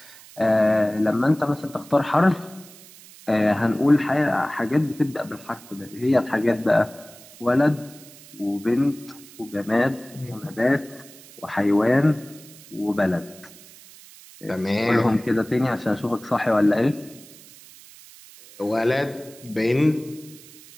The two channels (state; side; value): noise; right; hiss, 21 dB below the sound